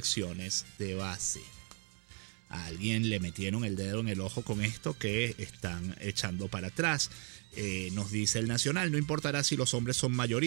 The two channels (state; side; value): quieter; left; 39.8 dB